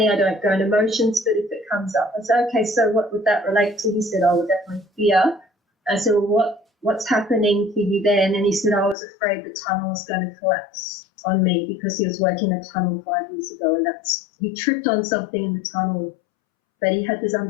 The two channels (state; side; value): drops out; right; at 9.0 s